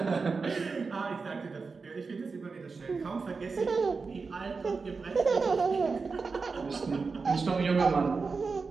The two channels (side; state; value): left; quieter; 4.6 dB